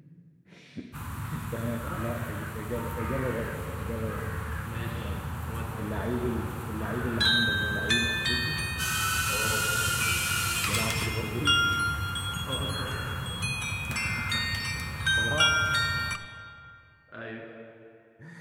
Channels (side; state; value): both; identical; correlation 1.00